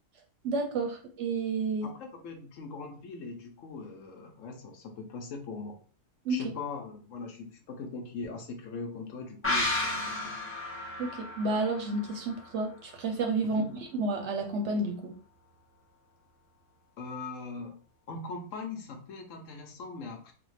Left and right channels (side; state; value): both; normal; correlation 0.08